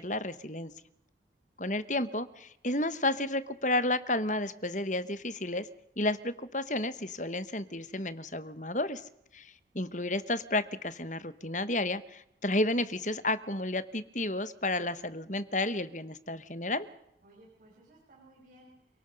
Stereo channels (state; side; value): normal; both; correlation 0.16